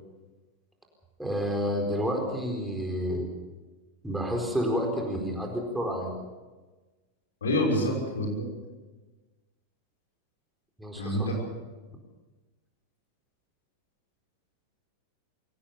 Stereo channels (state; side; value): normal; both; correlation 0.24